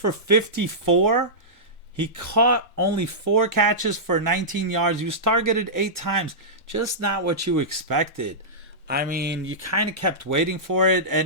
54. He caught only 4 catches for 19 yards. He was targeted 8 times. Just not what you expected. I mean, you kind of kept waiting for it.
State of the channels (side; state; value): both; normal; correlation -0.15